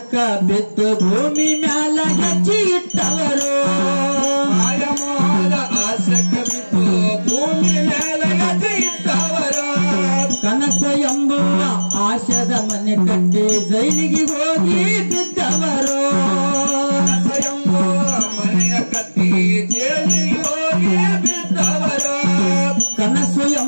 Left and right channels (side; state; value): both; inverted; correlation -1.00